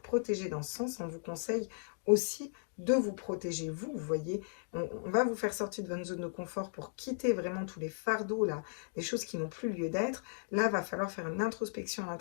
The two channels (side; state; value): right; silent; digital silence